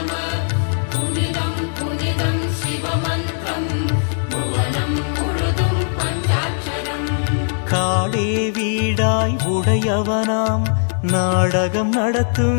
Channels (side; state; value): right; silent; digital silence